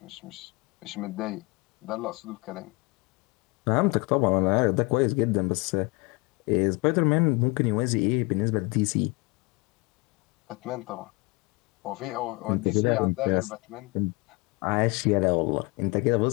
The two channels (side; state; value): right; quieter; 25.7 dB